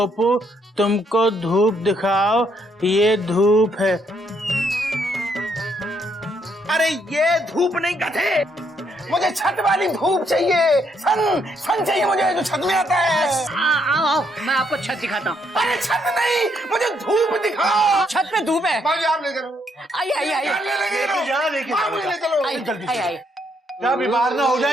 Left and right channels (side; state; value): both; normal; correlation 0.73